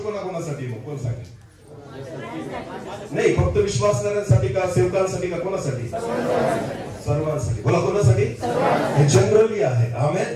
कोणाकोणासाठी? मग कोण सांगेल? नाही, फक्त विश्वासणाऱ्यांसाठी का, सेवकांसाठी का, कोणासाठी? सर्वांसाठी. बोला, कोणासाठी? हे जनरली आहे.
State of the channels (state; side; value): identical; both; correlation 1.00